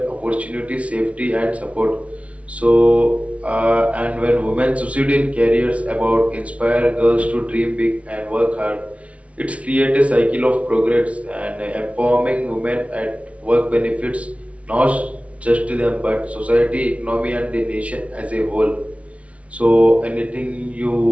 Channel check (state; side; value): late; left; 0.064 ms